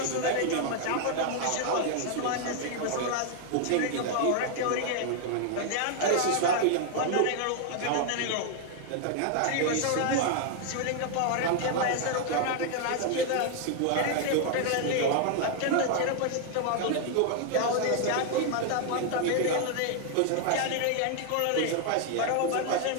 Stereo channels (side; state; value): both; different; correlation 0.00